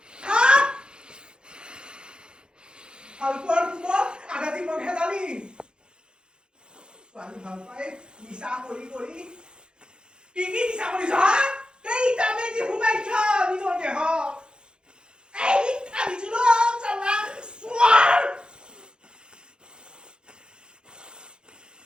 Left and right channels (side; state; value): left; late; 0.049 ms